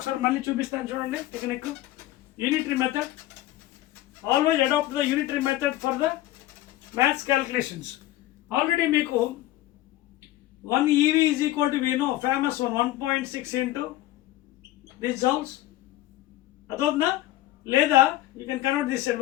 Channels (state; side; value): quieter; right; 15.6 dB